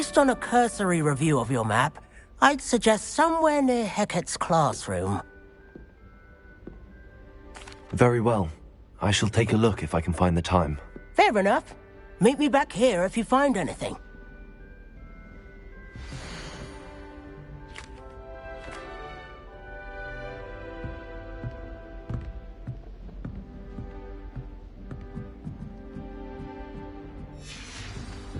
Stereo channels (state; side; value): identical; both; correlation 1.00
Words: on a cursory review of your map, I'd suggest somewhere near Hecat's classroom. Very well. I shall take a look if I can find the time. Fair enough. Meet me back here if you find anything.